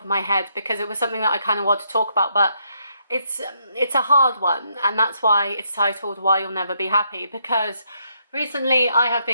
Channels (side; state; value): both; inverted; correlation -0.75